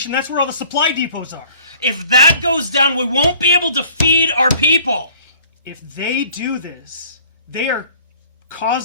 that's where all the supply depots are. If that goes down, we won't be able to feed our people. If they do this, they are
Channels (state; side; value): inverted; both; correlation -0.53